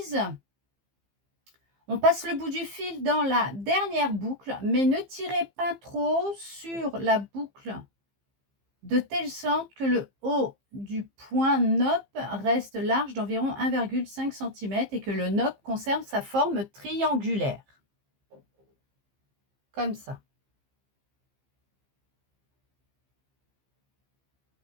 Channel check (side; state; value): left; late; 15 ms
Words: on passe le bout du fil dans la dernière boucle, mais ne tirez pas trop sur la boucle de telle sorte que le haut du point nopp reste large d'environ 1,5 cm et que le nopp conserve sa forme triangulaire. Comme ça.